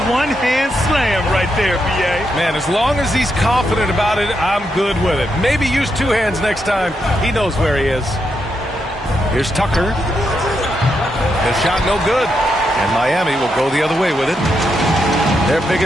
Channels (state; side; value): normal; both; correlation 0.82